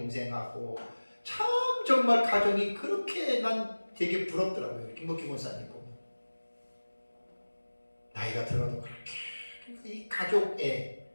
참 정말 가정이 그렇게 난 되게 부럽더라고요. 김복희 권사님 보면 나이가 들어도 그렇게 이 가족에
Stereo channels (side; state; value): both; inverted; correlation -1.00